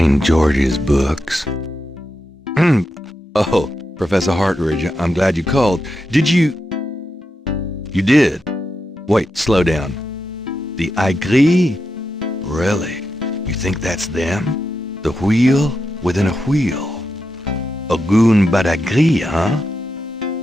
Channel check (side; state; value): both; normal; correlation 0.87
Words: George's books. Oh, Professor Hartridge, I'm glad you called. Did you... You did? Wait, slow down. The Aigris? Really? You think that's them? The wheel within a wheel? Ogun Badagri, huh?